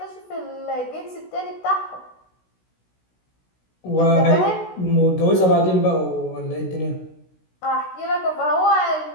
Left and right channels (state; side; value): late; right; 16 ms